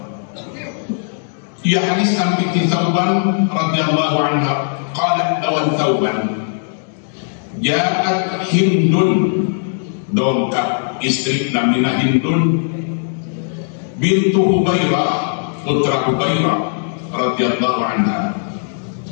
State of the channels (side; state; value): right; silent; digital silence